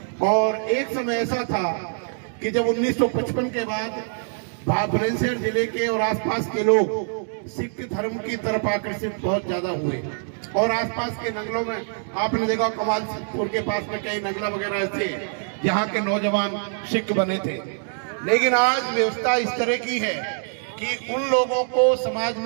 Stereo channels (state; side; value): silent; left; digital silence